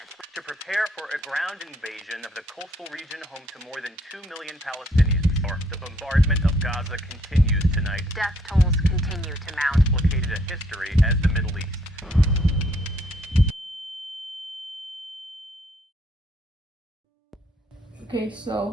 To prepare for a ground invasion of the coastal region home to more than 2 million Palestinians. The bombardment of Gaza continues tonight. Death tolls continue to mount. Complicated a history as the Middle East. Okay,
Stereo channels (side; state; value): both; normal; correlation 0.67